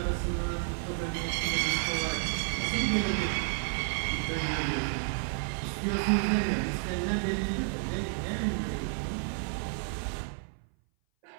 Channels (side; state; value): left; silent; 57 dB below the other